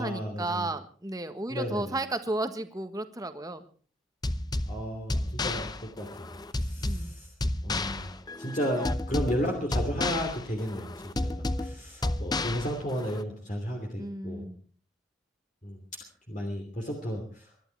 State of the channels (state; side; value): normal; both; correlation 0.68